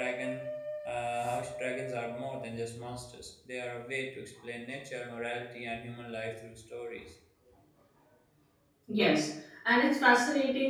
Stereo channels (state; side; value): identical; both; correlation 1.00